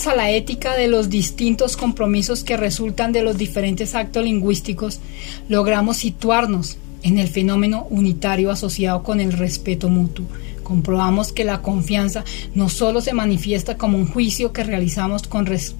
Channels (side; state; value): right; quieter; 30.3 dB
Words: a la ética de los distintos compromisos que resultan de los diferentes actos lingüísticos, logramos situarnos en el fenómeno unitario asociado con el respeto mutuo, comprobamos que la confianza no solo se manifiesta como un juicio que realizamos con